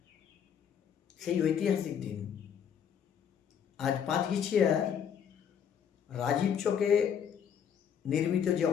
সেই ঐতিহাসিক দিন। আজ 5 গিছিয়ার রাজীব চকে নির্মিত যে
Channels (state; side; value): quieter; right; 8.1 dB